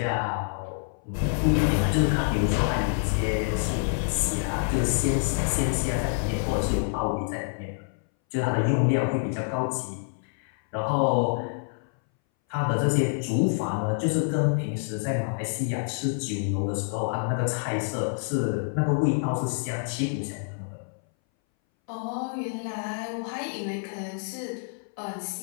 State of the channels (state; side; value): silent; right; 60 dB below the other